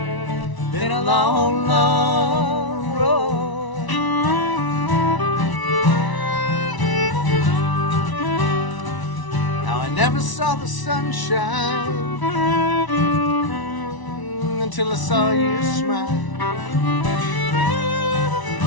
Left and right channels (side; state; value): right; late; 1.0 ms